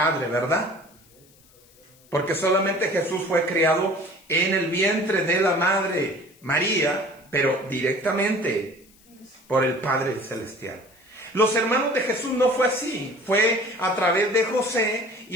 ¿verdad? Porque solamente Jesús fue criado en el vientre de la Madre María, pero directamente por el Padre Celestial. Los hermanos de Jesús no fue así, fue a través de José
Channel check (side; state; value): left; noise; hiss, 29 dB below the sound